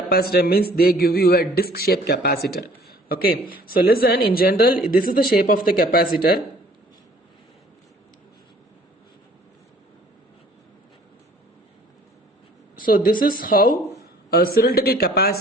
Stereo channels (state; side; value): normal; both; correlation 0.55